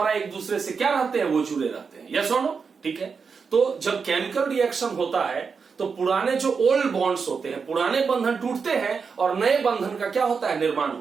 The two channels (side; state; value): left; quieter; 5.5 dB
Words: एक दूसरे से क्या रहते हैं, वो जुड़े रहते हैं। यस और नो? ठीक है। तो जब केमिकल रिएक्शन होता है तो पुराने जो ओल्ड बॉन्ड्स होते हैं, पुराने बंधन टूटते हैं और नए बंधन का क्या होता है, निर्माण